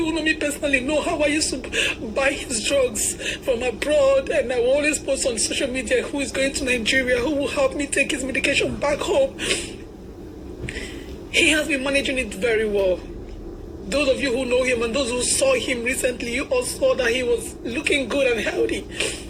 who know me personally know how I used to buy his drugs from abroad, and I will always post on social media who is going to Nigeria, who will help me take his medication back home. He has been managing it very well. Those of you who know him and those who saw him recently, you all saw that he was looking good and healthy.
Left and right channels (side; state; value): both; identical; correlation 1.00